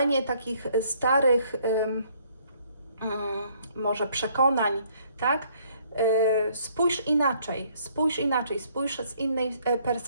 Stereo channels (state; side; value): inverted; both; correlation -0.64